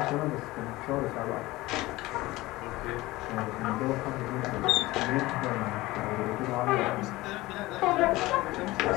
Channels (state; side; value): quieter; right; 19.3 dB